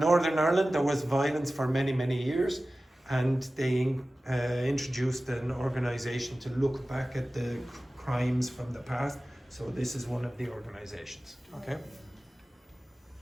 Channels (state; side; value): normal; both; correlation 0.96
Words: Ireland, there was violence for many, many years, and they introduced an organisation to look back at the crimes from the past. So this is one of the organisations. Okay.